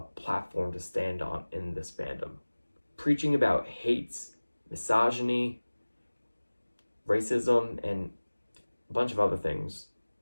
platform to stand on in this fandom. Preaching about hate, misogyny, racism, and a bunch of other things.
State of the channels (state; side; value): inverted; both; correlation -1.00